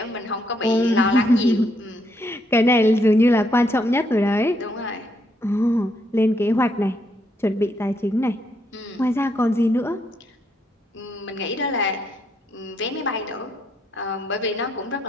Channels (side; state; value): both; normal; correlation 0.75